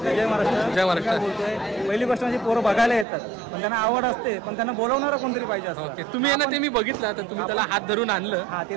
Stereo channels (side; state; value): left; drops out; at 3.1 s